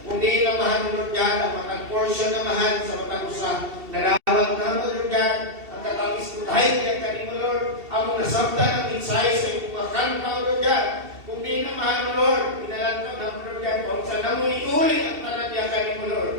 Kung di namahan, Lord God, ang matag-portion namahan sa matag usa, narawag na mo, Lord God, ang katapis mo dahil ka kanimo, Lord, among nasabtan ang mensahe sa imong mga kanta, Lord God. Kung di namahan mo, Lord, pinalantaw na mo, Lord God, kung saan na mo iulit ang tanadya kanimo, Lord.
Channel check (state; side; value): late; left; 2.7 ms